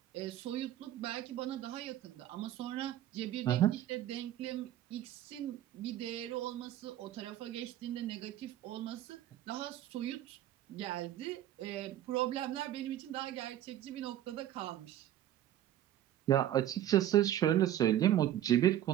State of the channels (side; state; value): left; quieter; 12.3 dB